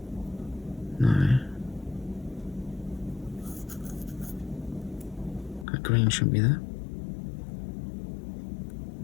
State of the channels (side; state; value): right; drops out; at 5.7 s